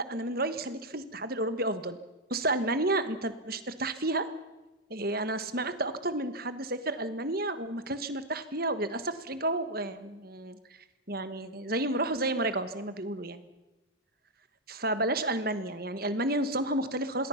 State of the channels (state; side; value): normal; both; correlation 0.02